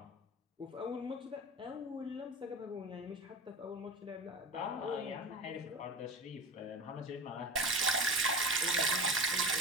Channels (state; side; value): normal; both; correlation 0.30